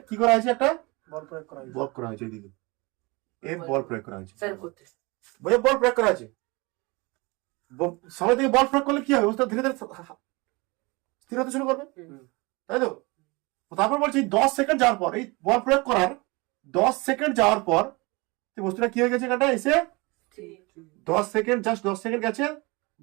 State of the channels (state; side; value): quieter; left; 25.7 dB